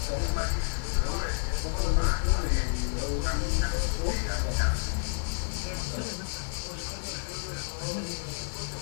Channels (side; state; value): right; silent; 58 dB below the other